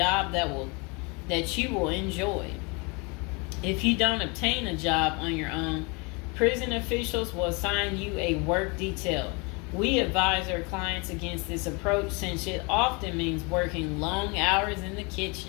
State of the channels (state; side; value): quieter; right; 29.9 dB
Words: that you will enjoy. If you don't obtain a job on your own, prison officials will assign you a work detail. We advise our clients against this approach since it often means working long hours in the